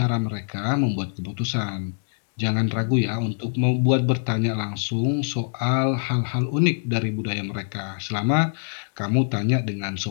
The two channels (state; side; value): silent; right; digital silence